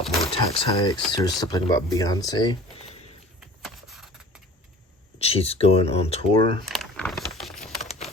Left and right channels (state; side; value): normal; both; correlation 0.44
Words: more tax hikes. There's something about Beyonce. She's going on tour.